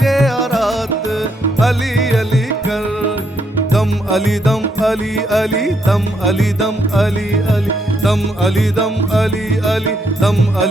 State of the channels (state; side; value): normal; both; correlation 0.75